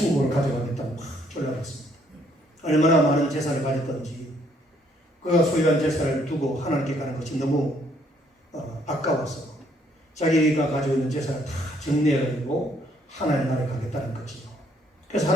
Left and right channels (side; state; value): both; normal; correlation 0.67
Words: 가져가겠다고 막 졸라봤습니다. 얼마나 많은 재산을 가졌던지 그가 소유한 재산을 두고 하나님께 가는 것이 너무 아까워서 자기가 가지고 있는 재산을 다 정리해가지고 하나님 나라에 가겠다는 거지요. 그래서